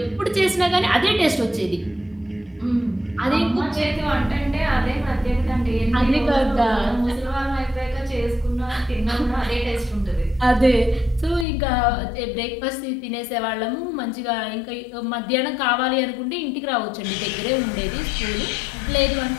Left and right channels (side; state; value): right; drops out; at 11.5 s